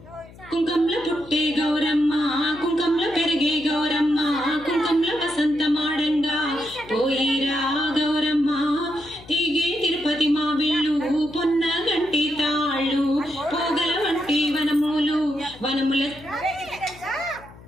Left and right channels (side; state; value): left; noise; hum, 21 dB below the sound